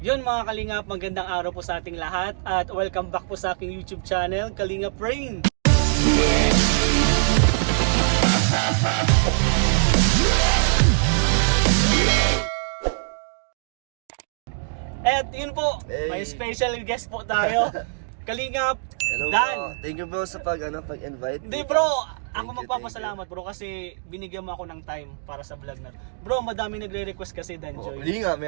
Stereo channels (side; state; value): left; silent; digital silence